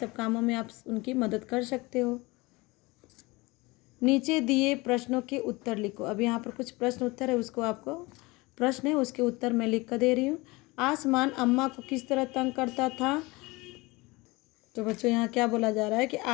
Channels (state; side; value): quieter; right; 23.5 dB